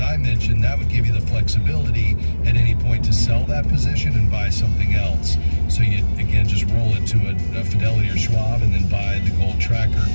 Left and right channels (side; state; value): both; inverted; correlation -1.00